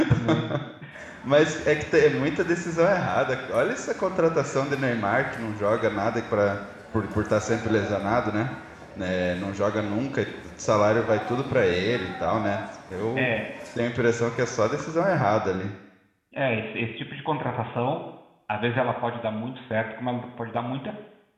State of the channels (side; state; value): both; identical; correlation 1.00